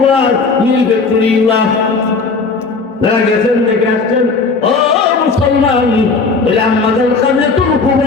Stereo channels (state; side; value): quieter; right; 4.3 dB